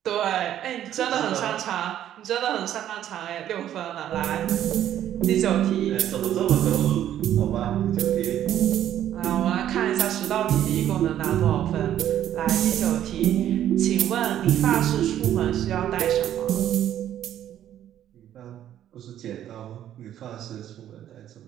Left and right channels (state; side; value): quieter; left; 11.3 dB